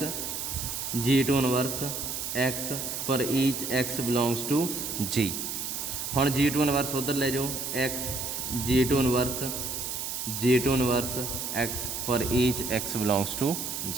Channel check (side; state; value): right; noise; hiss, 4 dB below the sound